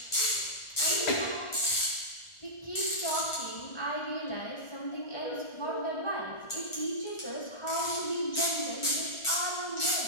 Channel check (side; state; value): right; late; 1.4 ms